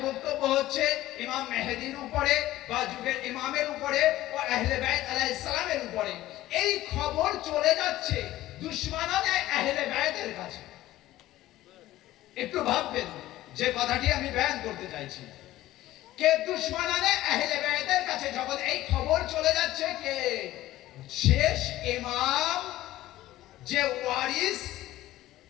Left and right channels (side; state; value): right; quieter; 15.5 dB